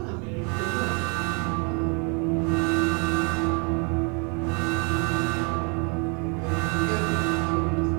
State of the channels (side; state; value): left; quieter; 34.8 dB